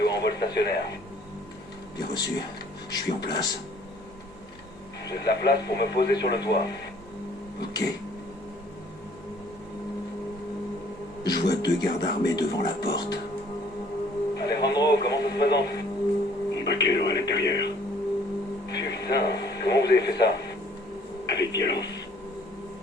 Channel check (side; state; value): both; normal; correlation 0.58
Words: en vol stationnaire. Bien reçu. Je suis en place. J'ai de la place pour me poser sur le toit. Ok. Je vois 2 gardes armés devant la porte. Alejandro, comment ça se présente? Un vaquero à l'intérieur. Putain, comment vous avez fait ça? Avec violence.